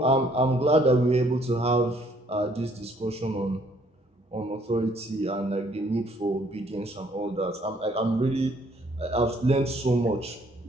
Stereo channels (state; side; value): normal; both; correlation 0.63